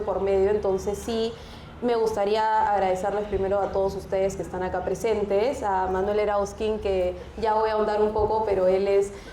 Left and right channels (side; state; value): both; identical; correlation 1.00